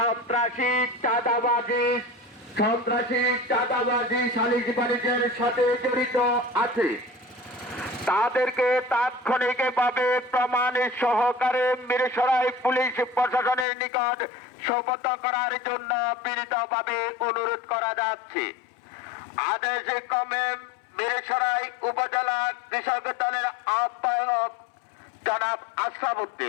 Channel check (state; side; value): drops out; right; at 13.7 s